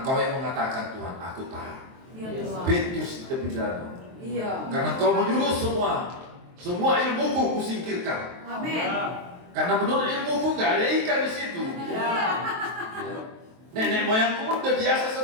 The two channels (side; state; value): left; late; 23 ms